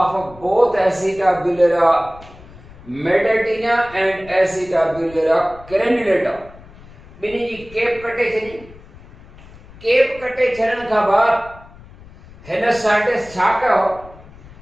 both Acetabularia medartina and Acetabularia crenulata। बिन्हीं जी केप कटे छॾी। केप कटे छॾण खां बाद हिन साइंटिस्ट छा कयो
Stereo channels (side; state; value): left; noise; rumble, 21 dB below the sound